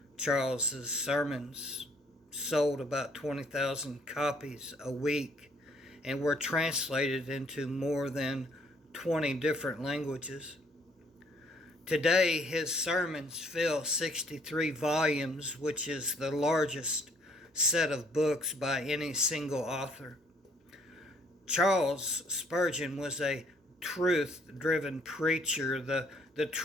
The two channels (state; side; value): normal; both; correlation 0.63